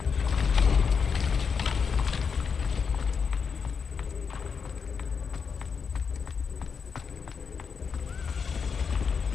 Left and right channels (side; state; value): right; quieter; 6.0 dB